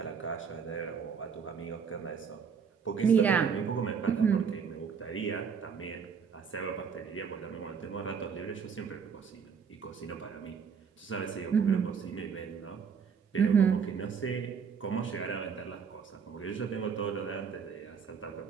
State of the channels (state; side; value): quieter; left; 6.4 dB